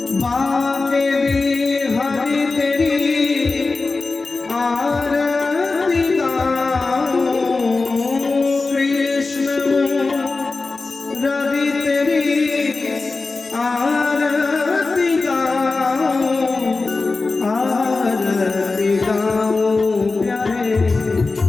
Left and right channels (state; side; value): quieter; right; 3.8 dB